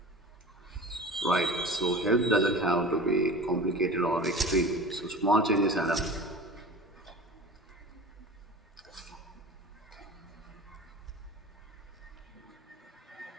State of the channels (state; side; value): normal; both; correlation 0.37